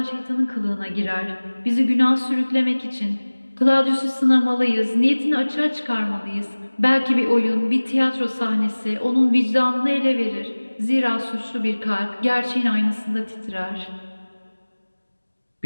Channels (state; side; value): inverted; both; correlation -1.00